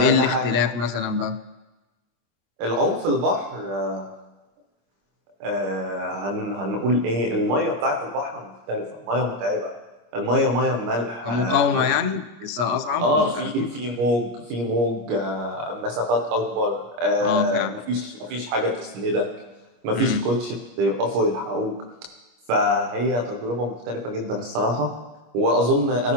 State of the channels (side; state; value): left; late; 25 ms